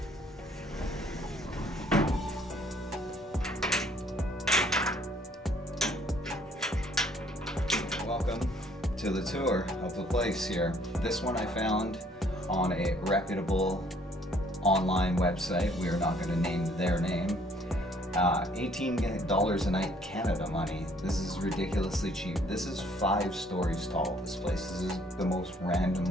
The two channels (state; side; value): normal; both; correlation 0.62